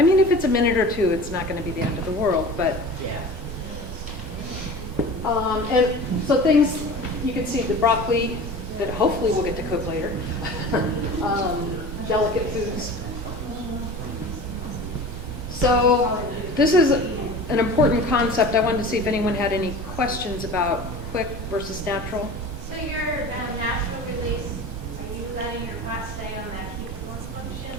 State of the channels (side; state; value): both; normal; correlation 0.37